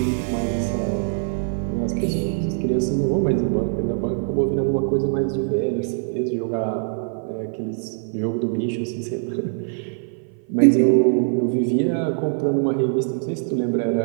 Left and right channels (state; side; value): silent; left; 56 dB below the other